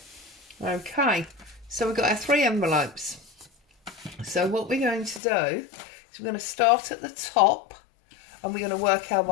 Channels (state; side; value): drops out; right; at 5.2 s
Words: Okay, so we've got our 3 envelopes. So what we're going to do is we're going to start at the top and we're going to work our